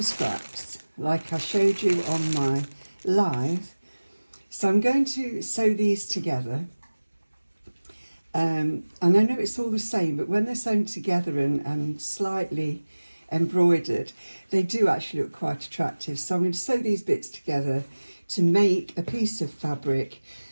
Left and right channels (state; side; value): inverted; both; correlation -1.00